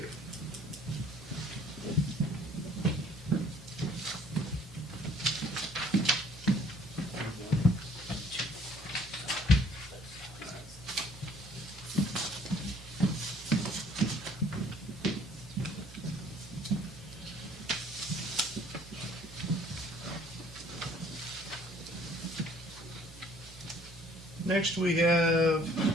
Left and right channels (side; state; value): both; normal; correlation 0.58